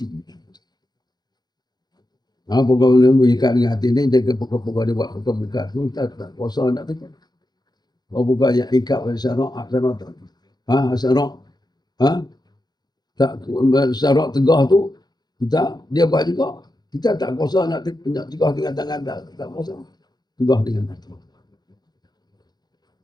Pokok-pokok mengikat dengan hati ni, dia pokok-pokok dia buat pokok mengikat tu, tak kuasa nak tegak. Bukan yang ikat pada syarak, syarak tak. Syarak, tak syarak tegah tu, dia buat juga. Kita tak kuasa nak tegah dengan tangan, tak kuasa. Tegah dengan hati.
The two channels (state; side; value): late; right; 0.20 ms